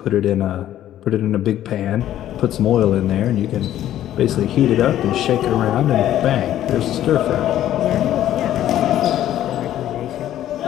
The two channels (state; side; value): quieter; right; 12.3 dB